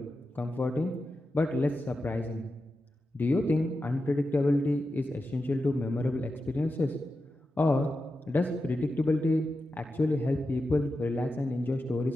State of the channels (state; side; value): normal; both; correlation 0.90